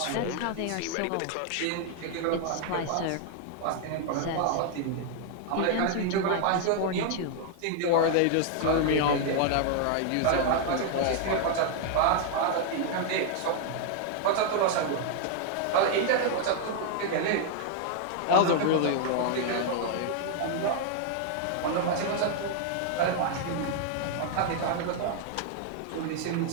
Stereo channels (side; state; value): both; different; correlation 0.00